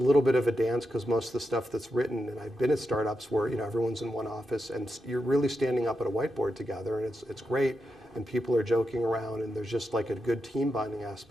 bit of a dance because most of the stuff that's written, and I've been at startups where everyone's in one office and you're really standing up at a whiteboard together, and it's great, and people are joking around, and there's just like a good team bonding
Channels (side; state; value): both; normal; correlation 0.87